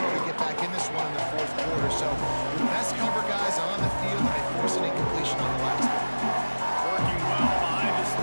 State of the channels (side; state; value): both; inverted; correlation -1.00